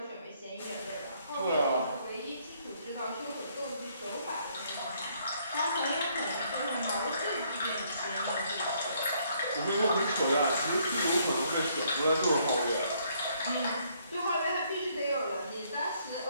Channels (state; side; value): inverted; both; correlation -0.68